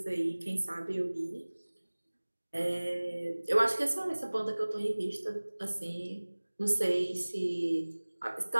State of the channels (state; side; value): inverted; both; correlation -1.00